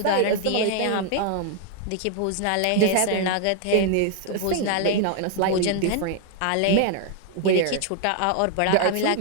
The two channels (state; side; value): different; both; correlation 0.00